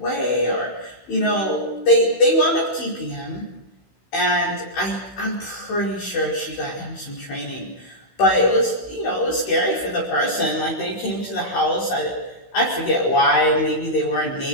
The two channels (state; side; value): late; right; 16 ms